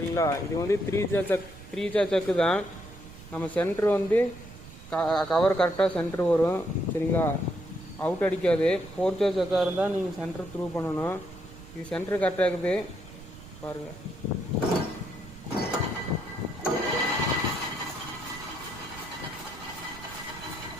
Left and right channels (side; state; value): right; noise; rumble, 17 dB below the sound